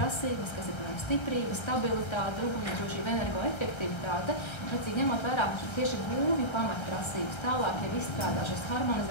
kas ir, piemēram, stiprība, stabilitāte, ugunsdrošība, energoefektivitāte, precīzi ņemot vērā tieši būvju pamatprasības, tālāk jau izstrādā šos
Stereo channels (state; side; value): late; right; 1.3 ms